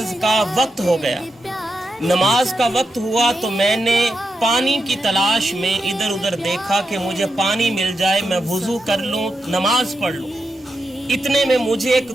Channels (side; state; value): both; normal; correlation 0.87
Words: کا وقت ہو گیا، نماز کا وقت ہوا تو میں نے پانی کی تلاش میں ادھر ادھر دیکھا کہ مجھے پانی مل جائے، میں وضو کر لوں، نماز پڑھ لوں۔ اتنے میں مجھے ایک